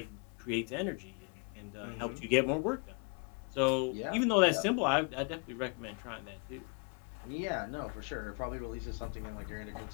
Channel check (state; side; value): quieter; right; 36.7 dB